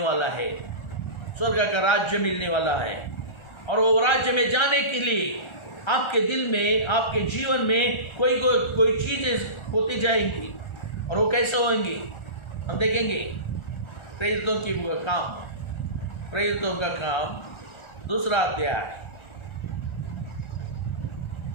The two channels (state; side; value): late; right; 1.4 ms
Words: वाला है, और वो राज्य में जाने के लिए आपके दिल में, आपके जीवन में कोई चीजें होती जाएंगी। और वो कैसे होंगी हम देखेंगे। प्रेरितों का काम 2 अध्याय